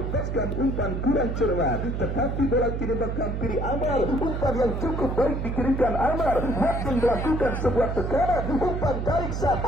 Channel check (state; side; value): noise; right; hum, 2 dB below the sound